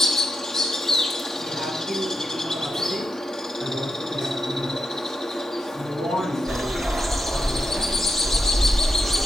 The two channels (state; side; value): normal; both; correlation 0.85